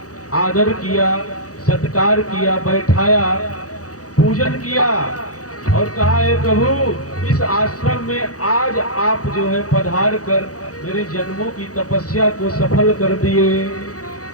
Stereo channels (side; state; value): right; late; 0.66 ms